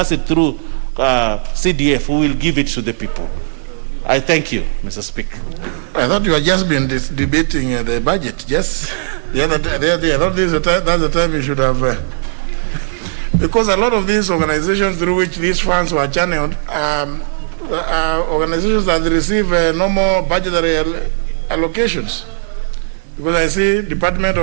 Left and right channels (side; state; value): left; silent; digital silence